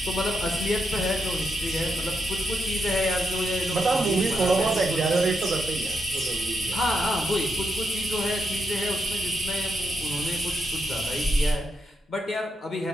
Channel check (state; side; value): normal; both; correlation 0.82